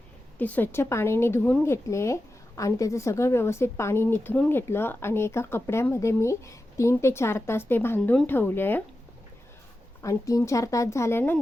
ते स्वच्छ पाण्याने धुवून घेतले आणि त्याचं सगळं व्यवस्थित पाणी निथरून घेतलं आणि एका कपड्यामध्ये मी 3 ते 4 तास ते बांधून ठेवले आणि 3-4 तास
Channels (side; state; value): both; normal; correlation 0.92